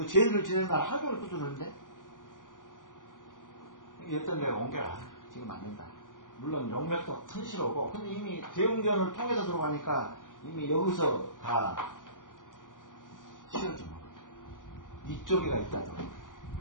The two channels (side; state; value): right; late; 0.88 ms